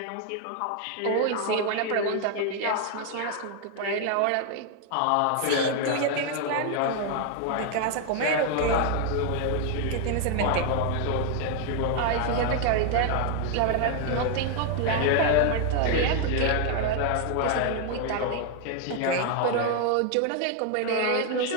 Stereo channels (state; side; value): different; both; correlation 0.00